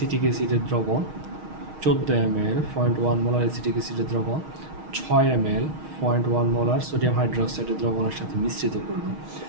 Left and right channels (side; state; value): left; late; 6.4 ms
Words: অ্যাসিডের দ্রবণ 14 ml 0.1 মোলার অ্যাসিটিক অ্যাসিডের দ্রবণ 6 ml 0.1 মোলার সোডিয়াম হাইড্রোক্সাইডের দ্রবণের সাথে মিশ্রিত করব।